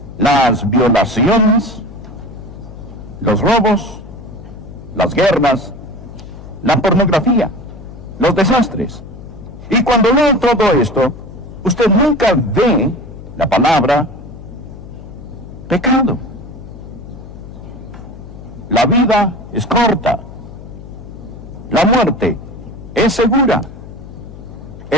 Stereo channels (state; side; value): noise; left; hum, 15 dB below the sound